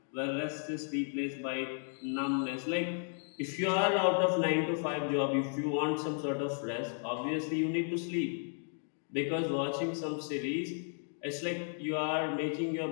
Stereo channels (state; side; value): silent; right; 55 dB below the other